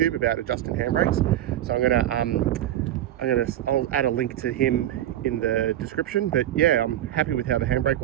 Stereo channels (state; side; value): quieter; left; 12.6 dB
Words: about adjusting handbrakes. So I'll add a link to him in the description. But yeah, I'm happy with how the handbrake